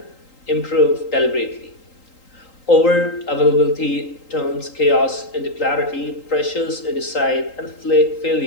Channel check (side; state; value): right; late; 3.8 ms